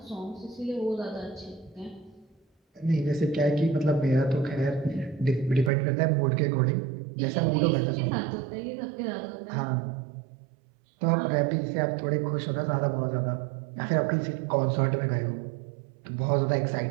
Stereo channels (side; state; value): left; drops out; at 5.7 s